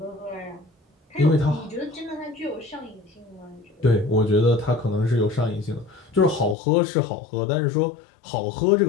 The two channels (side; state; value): right; drops out; at 6.6 s